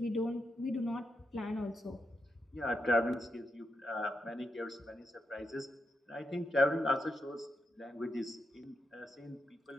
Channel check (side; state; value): both; normal; correlation 0.84